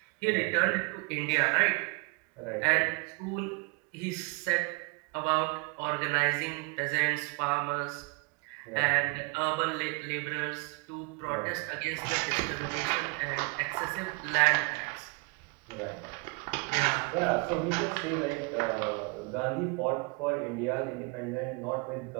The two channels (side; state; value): left; quieter; 29.2 dB